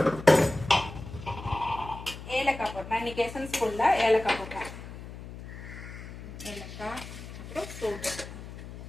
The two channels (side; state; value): left; noise; hum, 12 dB below the sound